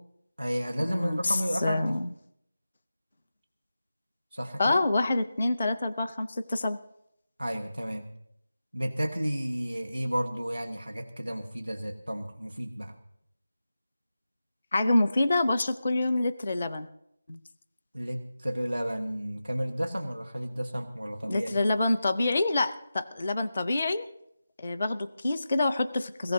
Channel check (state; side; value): inverted; both; correlation -0.93